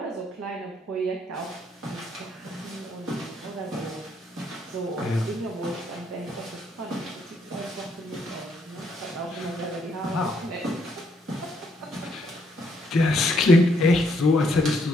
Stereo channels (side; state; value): both; normal; correlation 0.72